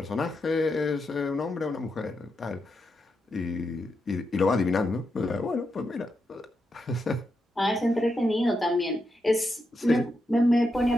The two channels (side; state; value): both; normal; correlation 0.84